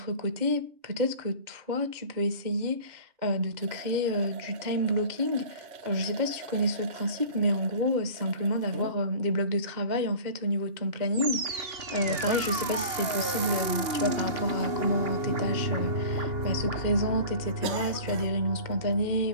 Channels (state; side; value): late; left; 2.8 ms